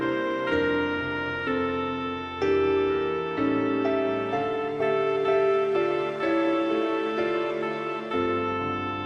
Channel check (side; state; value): both; identical; correlation 1.00